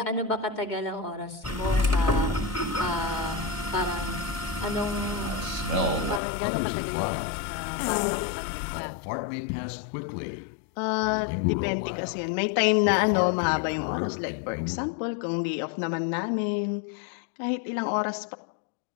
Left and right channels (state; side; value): drops out; right; at 6.2 s